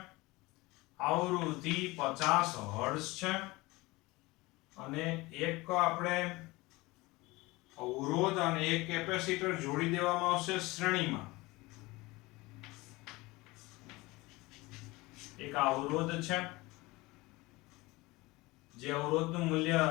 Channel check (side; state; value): right; quieter; 21.8 dB